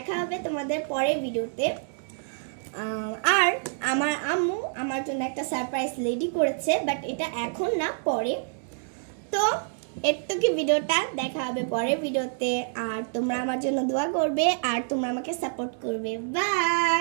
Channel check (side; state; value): left; silent; digital silence